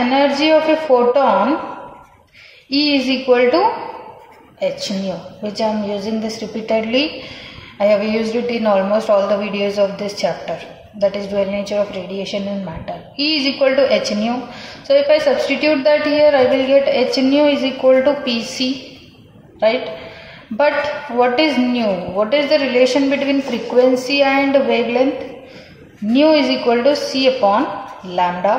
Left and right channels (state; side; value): identical; both; correlation 1.00